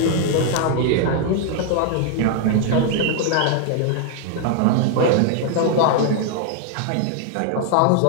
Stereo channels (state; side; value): different; both; correlation 0.00